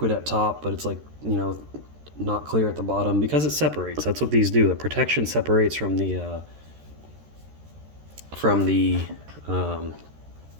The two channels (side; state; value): left; late; 13 ms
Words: at top, but it's like, not clear at the bottom because it separates. That's what these do. The protection separates from the